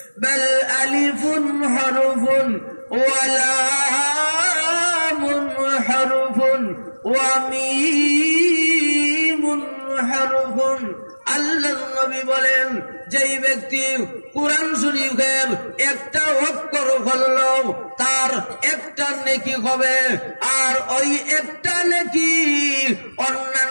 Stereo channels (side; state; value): both; inverted; correlation -1.00